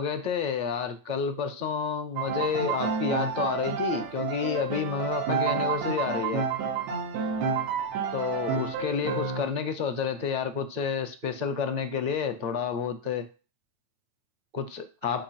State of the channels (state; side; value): late; left; 9.2 ms